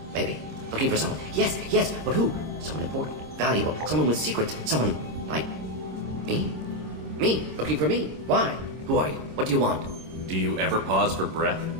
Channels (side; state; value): left; late; 26 ms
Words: Maybe. Looking for someone. Yes. But who? Someone important. Valuable. Someone with secrets. Someone like me? Me? Looking for me? Why? Who are you? What do you want? Do you ever pause for breath?